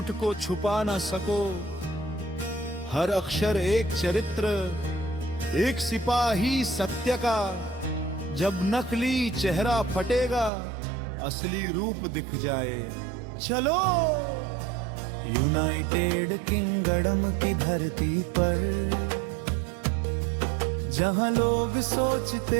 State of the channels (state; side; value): drops out; left; at 10.5 s